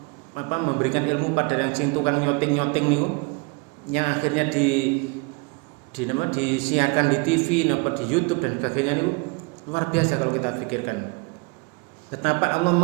memberikan ilmu pada yang sing tukang nyoting niku, yang akhirnya disiarkan di TV, di YouTube dan sebagainya niku luar biasa kalau kita pikirkan. Betapa Allah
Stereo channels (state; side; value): quieter; left; 29.2 dB